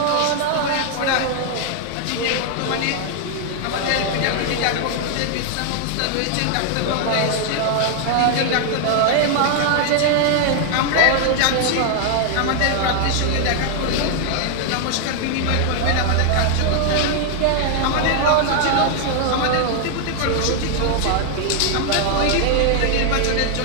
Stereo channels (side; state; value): both; different; correlation 0.00